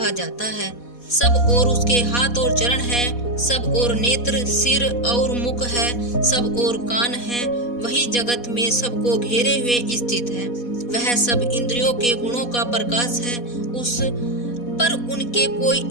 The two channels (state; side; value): late; right; 4.2 ms